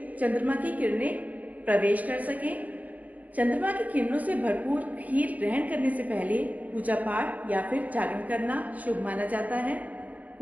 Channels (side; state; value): left; late; 0.076 ms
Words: चंद्रमा की किरणें प्रवेश कर सकें। चंद्रमा की किरणों से भरपूर खीर ग्रहण करने से पहले पूजा पाठ या फिर जागरण करना शुभ माना जाता है।